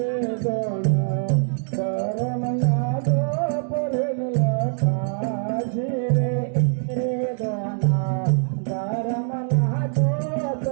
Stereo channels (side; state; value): left; silent; digital silence